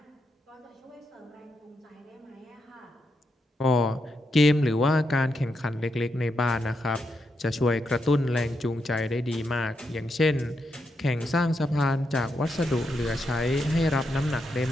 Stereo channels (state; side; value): normal; both; correlation 0.83